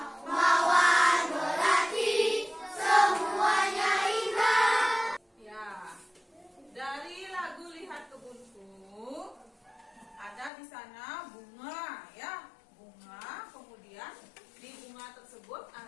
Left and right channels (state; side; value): drops out; right; at 10.5 s